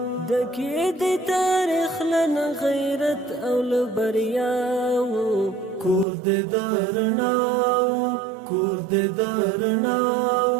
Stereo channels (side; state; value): left; drops out; at 6.1 s